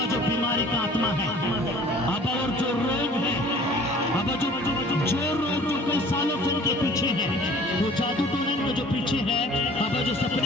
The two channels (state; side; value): normal; both; correlation 0.49